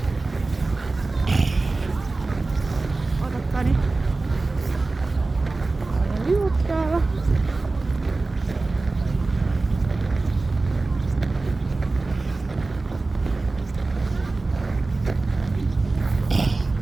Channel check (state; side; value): quieter; left; 3.4 dB